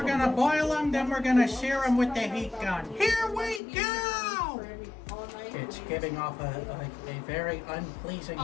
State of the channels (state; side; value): drops out; right; at 3.6 s